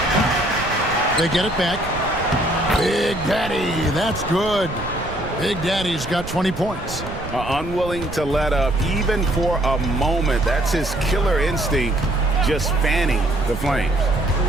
They get it back. Big Daddy, that's good. Big Daddy's got 20 points. Unwilling to let up even for a moment. That's his killer instinct, just fanning the flames.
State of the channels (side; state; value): right; noise; rumble, 10 dB below the sound